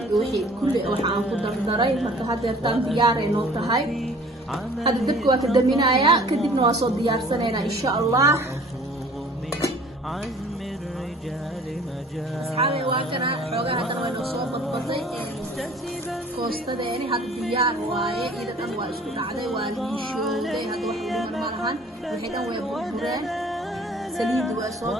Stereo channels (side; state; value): both; normal; correlation 0.50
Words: wixii kulli waxaan ku dardaray marka hadeertaan diyaareen oo tahay hadda dabka waa ka daminayaa kadibna waa soo diyaarsanayna insha Allah asxaabi waa kana xoogaa hadda way noo soo badbatay koostadeeni hadda diyaar waaye ida dhan waa isku dhacday waa liishowday hadda wax u dhiman ma lahan wixii dhan way burbureen saliid waa soo